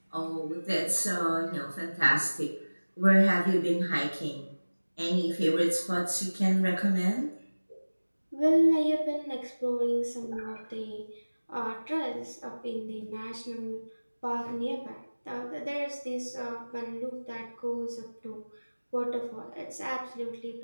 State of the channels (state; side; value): inverted; both; correlation -1.00